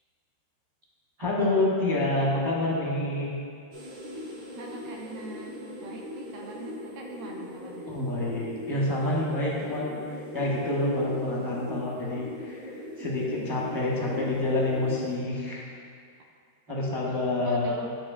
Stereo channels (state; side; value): late; left; 13 ms